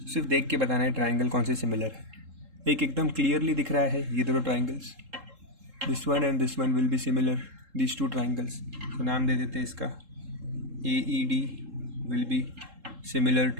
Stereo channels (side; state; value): left; late; 3.7 ms